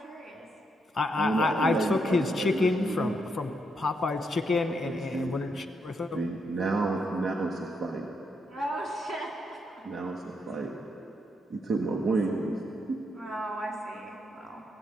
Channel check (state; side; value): normal; both; correlation 0.78